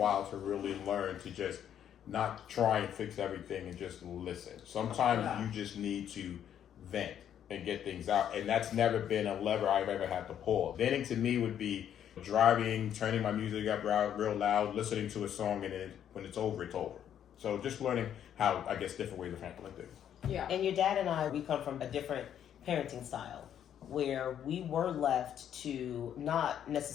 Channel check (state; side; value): quieter; right; 9.7 dB